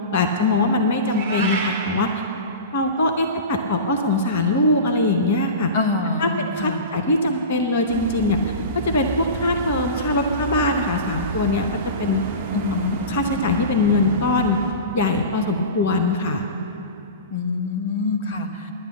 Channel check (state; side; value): inverted; both; correlation -0.30